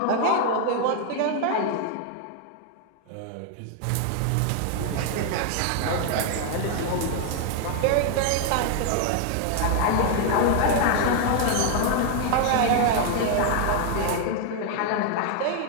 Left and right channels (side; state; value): both; different; correlation 0.00